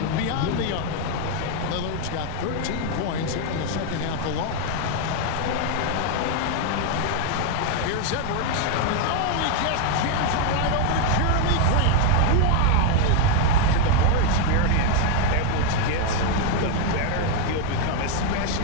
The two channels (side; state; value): both; different; correlation 0.00